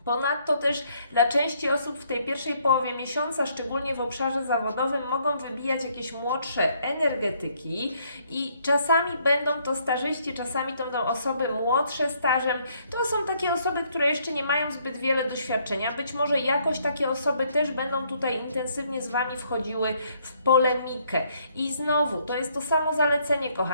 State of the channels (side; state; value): both; inverted; correlation -0.68